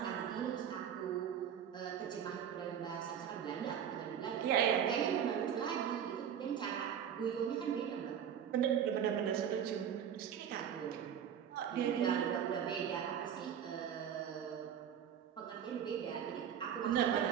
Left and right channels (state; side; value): quieter; left; 8.8 dB